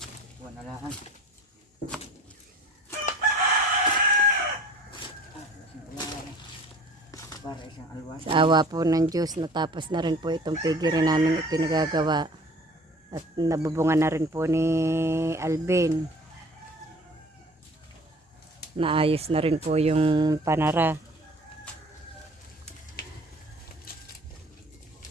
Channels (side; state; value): both; normal; correlation 0.49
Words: buwan na lang. Para isang alwas. Sa awa po ng Diyos, natapos na rin po itong pigiri namin ipinagagawa. At nabubungan na rin po ni Alvin. Naayos na rin po yung panara.